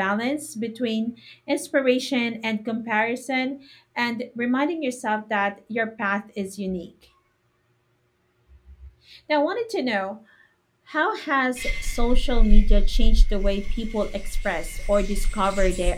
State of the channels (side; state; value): both; identical; correlation 1.00